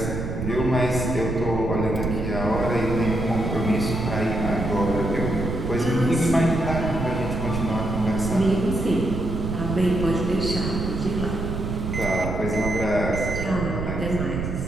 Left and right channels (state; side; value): noise; right; rumble, 4 dB below the sound